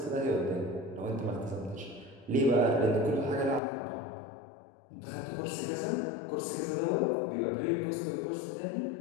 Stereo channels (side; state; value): right; drops out; at 3.6 s